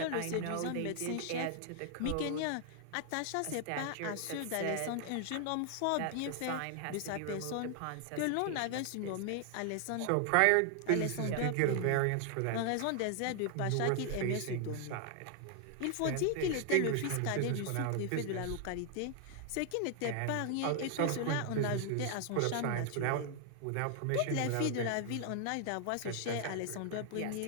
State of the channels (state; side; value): different; both; correlation 0.00